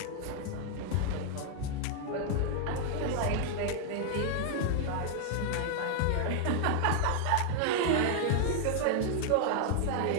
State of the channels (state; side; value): different; both; correlation 0.00